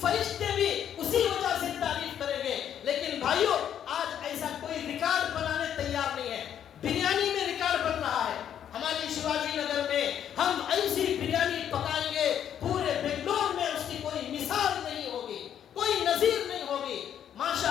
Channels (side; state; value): right; quieter; 9.6 dB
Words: فرشتے بھی اسی وجہ سے تعریف کریں گے. لیکن بھائیو, آج ایسا کوئی ریکارڈ بنانے تیار نہیں ہے. بریانی میں ریکارڈ بن رہا ہے. ہماری شیواجی نگر میں ہم ایسی بریانی پکائیں گے, پورے بنگلور میں اس کی کوئی مثال نہیں ہوگی, کوئی نظیر نہیں ہوگی.